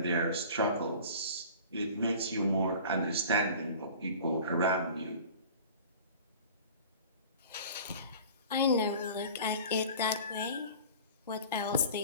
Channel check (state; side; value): inverted; both; correlation -0.41